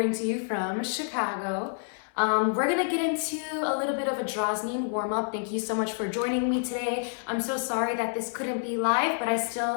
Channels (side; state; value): right; silent; 59 dB below the other